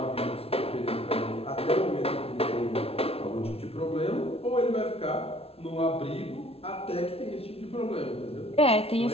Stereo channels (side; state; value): right; late; 0.28 ms